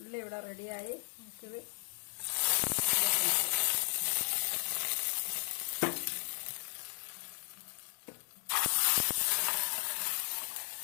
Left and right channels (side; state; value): right; silent; digital silence